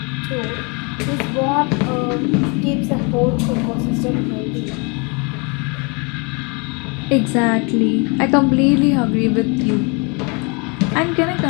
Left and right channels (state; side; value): quieter; right; 32.1 dB